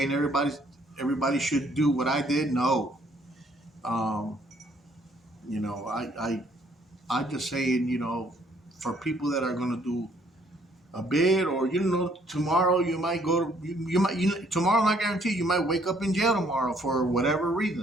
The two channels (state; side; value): normal; both; correlation 0.65